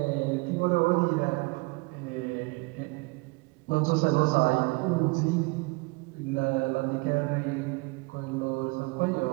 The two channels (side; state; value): left; quieter; 26.5 dB